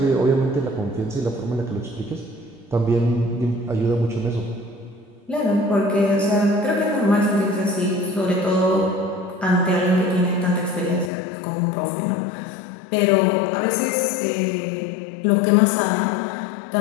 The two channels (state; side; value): drops out; right; at 11.1 s